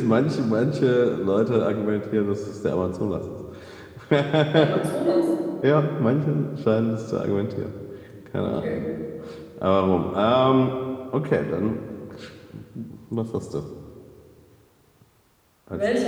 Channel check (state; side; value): identical; both; correlation 1.00